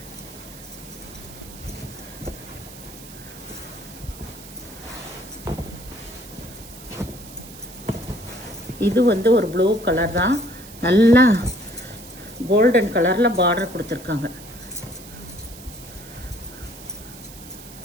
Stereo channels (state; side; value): noise; right; hiss, 17 dB below the sound